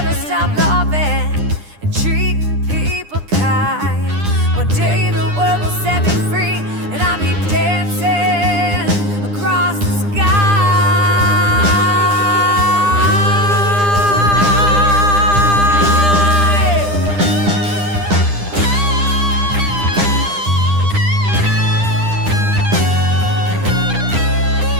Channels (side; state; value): left; late; 9.9 ms